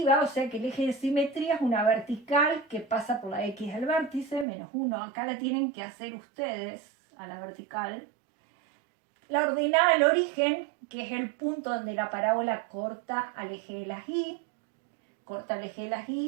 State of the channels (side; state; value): left; drops out; at 4.5 s